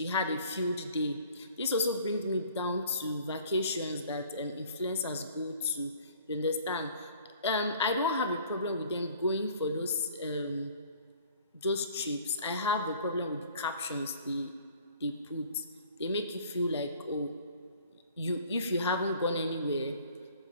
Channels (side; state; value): both; inverted; correlation -0.52